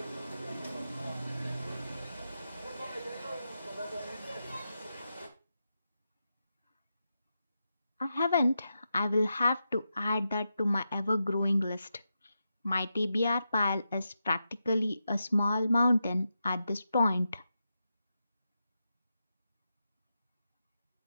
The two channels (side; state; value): both; inverted; correlation -0.87